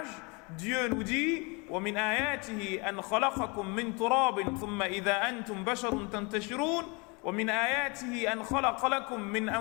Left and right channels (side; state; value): right; quieter; 29.8 dB